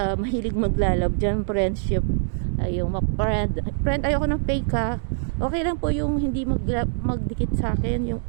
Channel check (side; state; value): left; silent; digital silence